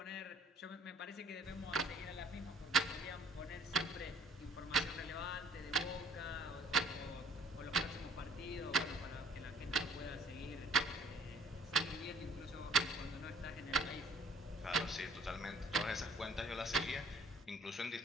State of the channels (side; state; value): both; normal; correlation 0.56